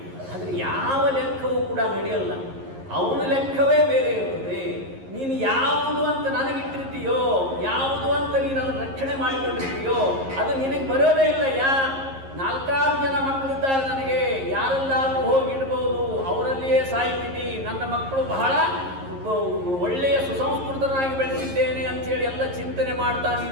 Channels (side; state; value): left; late; 11 ms